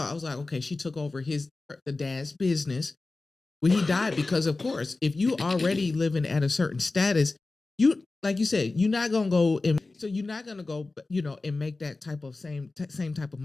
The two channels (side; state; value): right; quieter; 3.4 dB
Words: was like, okay, she took over the dad's business. when he died, because of course, if you already living at a certain status, you like you said, you're not gonna go and so you're not gonna go, and make that type of same type of